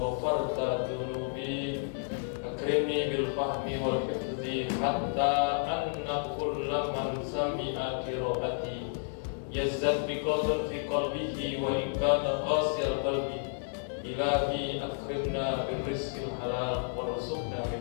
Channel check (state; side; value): silent; right; digital silence